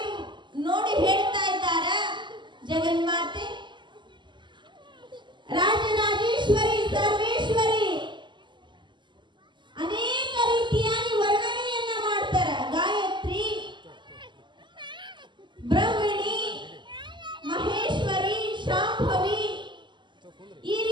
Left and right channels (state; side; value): late; left; 0.22 ms